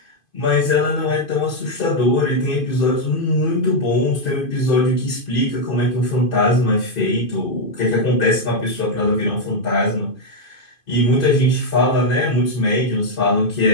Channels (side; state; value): right; late; 2.5 ms